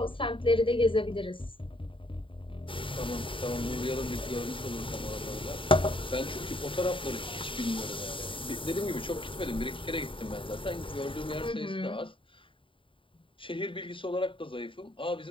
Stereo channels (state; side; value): late; right; 0.25 ms